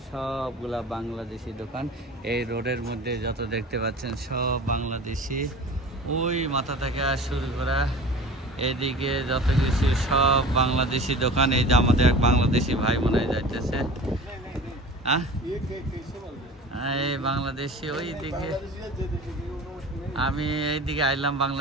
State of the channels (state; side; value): normal; both; correlation 0.39